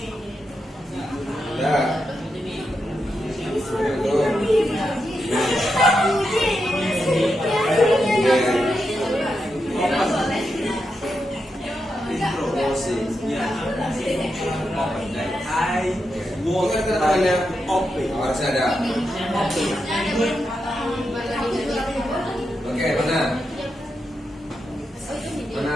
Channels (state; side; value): normal; both; correlation 0.86